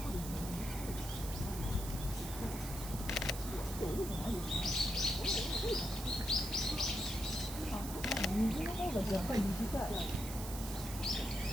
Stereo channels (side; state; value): right; noise; hiss, 9 dB below the sound